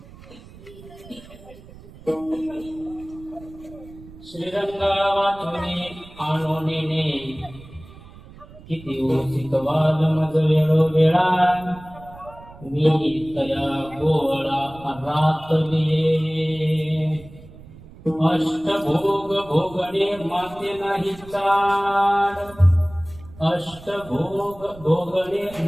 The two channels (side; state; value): right; noise; rumble, 20 dB below the sound